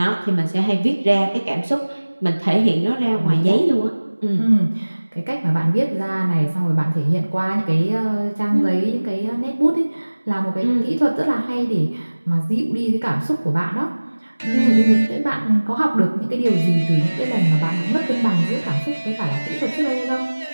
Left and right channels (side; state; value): both; inverted; correlation -1.00